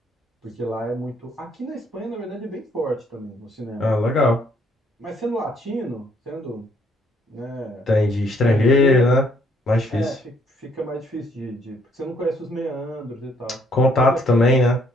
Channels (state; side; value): normal; both; correlation 0.67